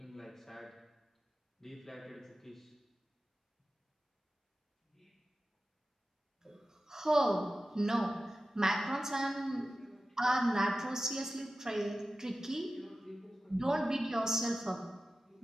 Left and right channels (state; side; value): normal; both; correlation 0.94